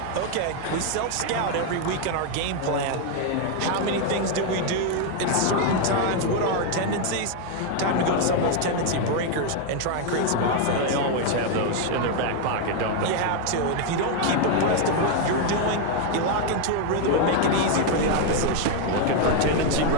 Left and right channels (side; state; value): both; different; correlation 0.01